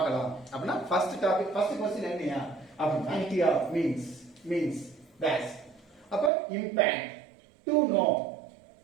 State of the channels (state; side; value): drops out; left; at 6.3 s